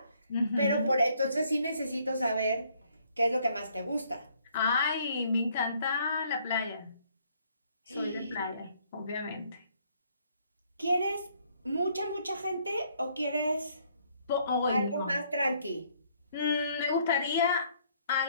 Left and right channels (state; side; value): inverted; both; correlation -0.66